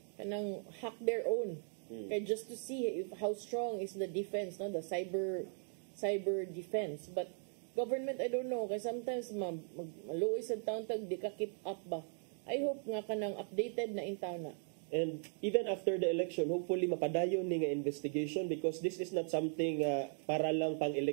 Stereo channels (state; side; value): silent; left; 52 dB below the other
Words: kanang hack their own kay just to see how strong is the defense, the cyber defense. But government, I don't know, kay sometimes maluoy sa taon tag di ka keep up ba. I hope nga kanang updated na in town na. And even after the election, hopefully mapadayon ni nga investigation because this is not something para lang pang